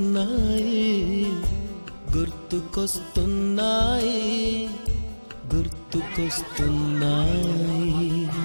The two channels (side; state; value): both; inverted; correlation -1.00